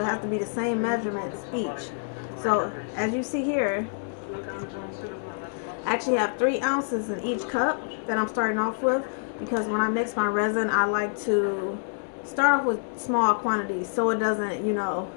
has to be the same measurements each. So as you see here, I actually have 3 ounces in each cup that I'm starting off with, because when I mix my resin, I like to start off with small quantities so it doesn't,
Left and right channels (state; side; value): silent; right; digital silence